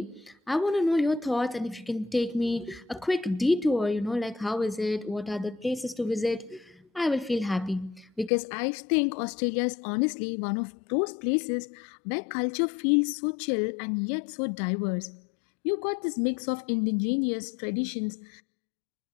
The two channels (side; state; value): right; drops out; at 8.3 s